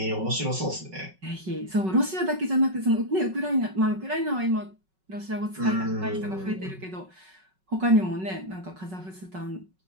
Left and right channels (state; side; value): late; left; 5.4 ms